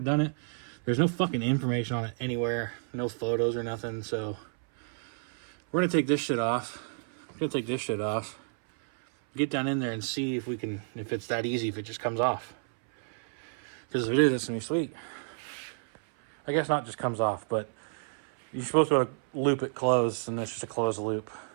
it. There's no fucking information on it anywhere. No photos or nothing. So we're going to take this shit off. Get down in there and see if we can, if it's that easy, if it just comes off. Because if it is, it's going to be sweet. I guess not just comes off, but you're supposed to loop it closed, and it's just a closed loop.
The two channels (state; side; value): silent; left; 58 dB below the other